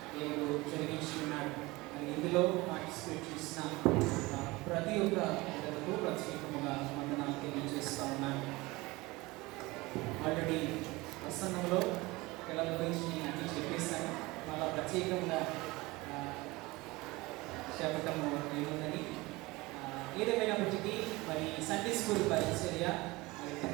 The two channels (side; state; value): left; quieter; 22.0 dB